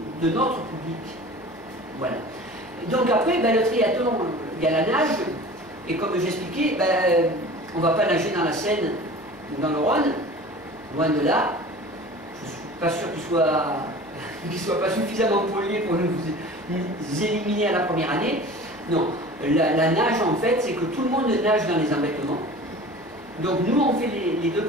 de notre public. Voilà. Donc après, le triathlon, il y a la nage, et comme j'expliquais, on ne va pas nager dans la Seine ou dans le Rhône, loin de là. Je ne suis pas sûr qu'il soit pas suffisamment pollué pour nous éliminer à la première année. Non, la nage en fait, c'est que tout le monde nage dans les embêtements. Donc nous, on fait les deux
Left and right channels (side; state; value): left; noise; hum, 27 dB below the sound